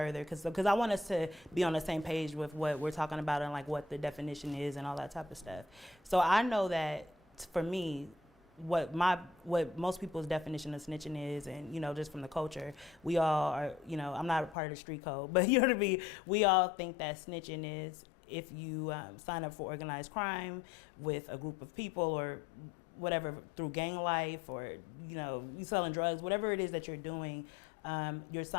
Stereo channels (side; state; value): right; drops out; at 14.6 s